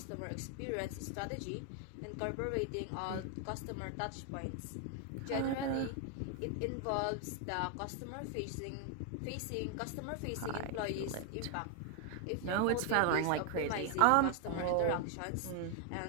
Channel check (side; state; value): both; different; correlation 0.00